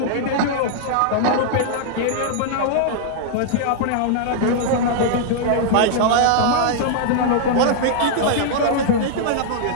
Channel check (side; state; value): both; different; correlation -0.01